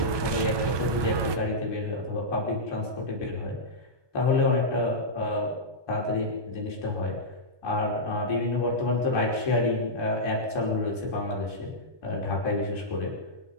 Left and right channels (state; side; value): late; left; 1.2 ms